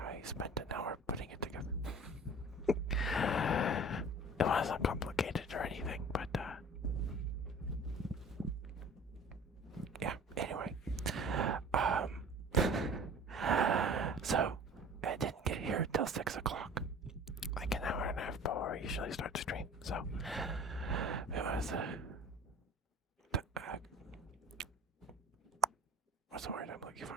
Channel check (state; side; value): normal; both; correlation 0.44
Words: spent an hour putting it together. It wasn't complicated or anything, but yeah. Anyway, so I didn't get here till 6 o'clock, like an hour and a half before I usually start the stream. So it was what's the word I'm looking